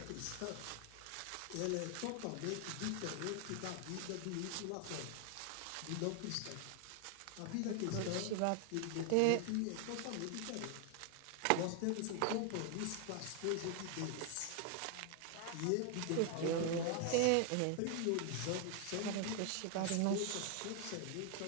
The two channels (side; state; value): both; different; correlation 0.00